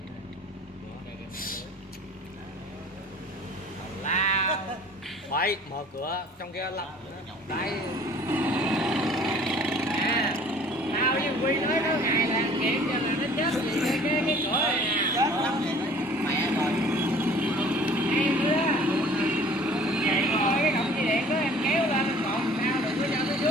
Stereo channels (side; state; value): both; normal; correlation 0.50